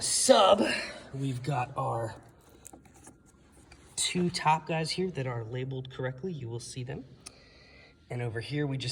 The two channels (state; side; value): identical; both; correlation 1.00